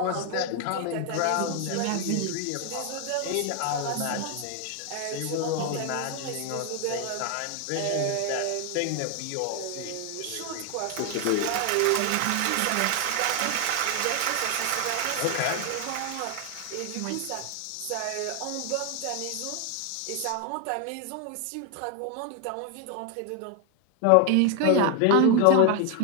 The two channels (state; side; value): different; both; correlation 0.01